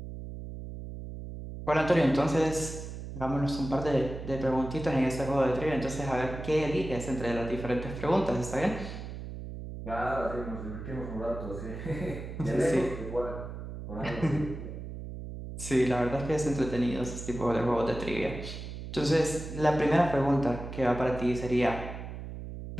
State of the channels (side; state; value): right; noise; hum, 9 dB below the sound